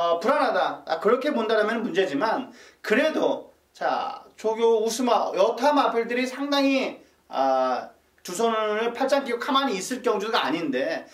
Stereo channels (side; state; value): both; identical; correlation 1.00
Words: 불안하다 그렇게 본다면 문제지만, 그래도 자, 조교 우스마 여타 마필들이 상당히 두 손을 팔짱 끼고 가만히 있을 경주가 아닌데